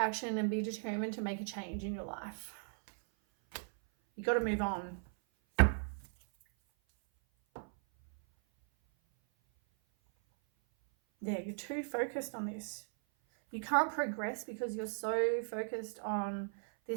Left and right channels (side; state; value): left; silent; 53 dB below the other